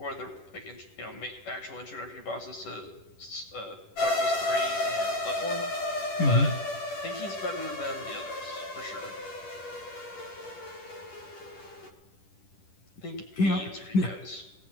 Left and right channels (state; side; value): late; right; 10 ms